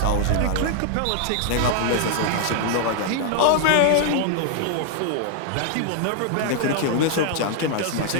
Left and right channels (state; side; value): different; both; correlation 0.00